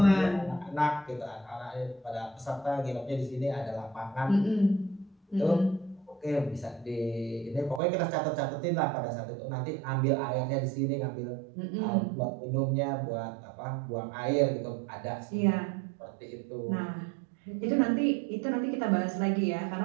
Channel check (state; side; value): drops out; left; at 7.8 s